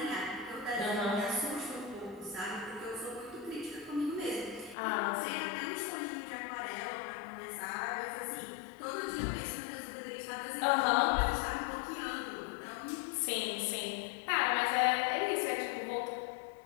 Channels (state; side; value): drops out; right; at 4.8 s